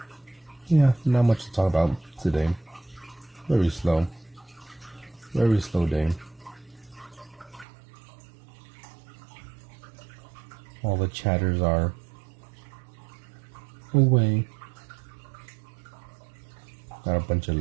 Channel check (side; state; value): left; drops out; at 7.7 s